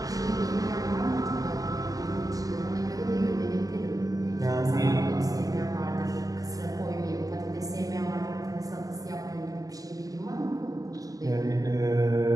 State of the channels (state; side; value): late; left; 0.17 ms